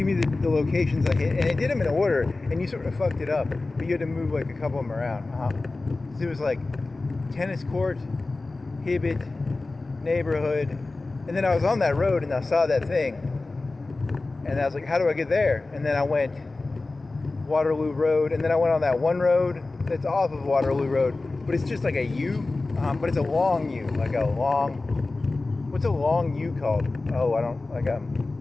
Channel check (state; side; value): quieter; right; 3.3 dB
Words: me the locations I hit," and it did them in order, and you sort of fucked it up, but you had to move like a couple of them around. So it was like tennis court, Hibbett, neighborhood, and then I was on that road and I saw that thing, and I was like, "How do I get there?" And then I went Waterloo Road, and then I went on that one road that's off of Waterloo Road, but it's just like a U, but it's a long U, like a long. What's a long U called? Oh, I don't,